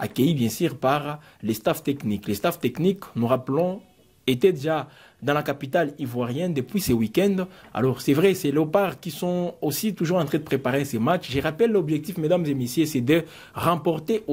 bien sûr par les staffs techniques. Les staffs techniques, nous rappelons, étaient déjà dans la capitale ivoirienne depuis ce week-end. Alors c'est vrai, c'est les léopards qui sont aussi toujours en train de préparer ces matchs. Je rappelle l'objectif, mesdames et messieurs, c'est de remporter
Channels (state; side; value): identical; both; correlation 1.00